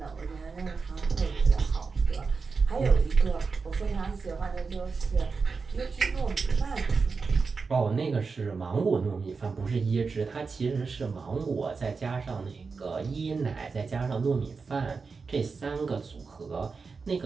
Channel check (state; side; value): quieter; left; 4.8 dB